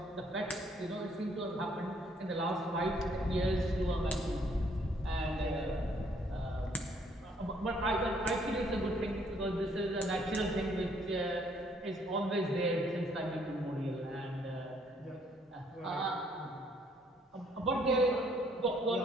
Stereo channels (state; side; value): normal; both; correlation 0.66